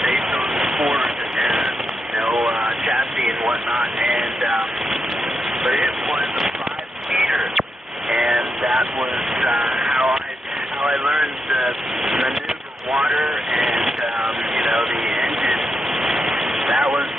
based on Ford and chassis and whatnot, and but it was a 5-seater, and that was how I learned to maneuver water and the engine. That was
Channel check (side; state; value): both; normal; correlation 0.84